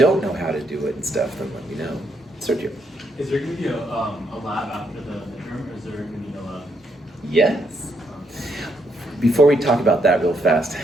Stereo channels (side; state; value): both; normal; correlation 0.76